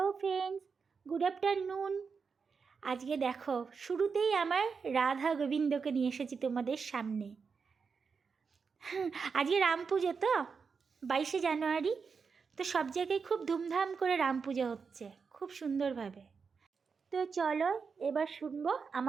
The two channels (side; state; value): left; quieter; 5.5 dB